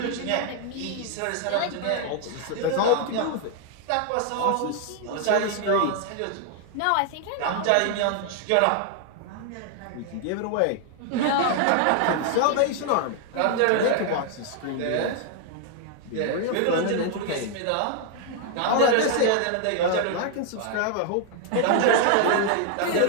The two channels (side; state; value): both; different; correlation 0.00